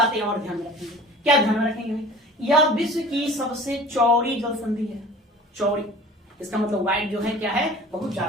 और ध्यान में रखेंगे, क्या ध्यान में रखेंगे, यह विश्व की सबसे चौड़ी जल संधि है, चौड़ी, इसका मतलब वाइड जो है क्या है, बहुत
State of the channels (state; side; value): normal; both; correlation 0.43